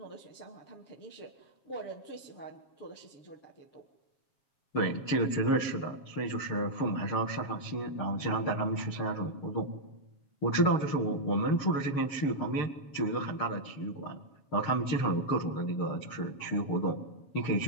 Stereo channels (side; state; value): right; late; 7.3 ms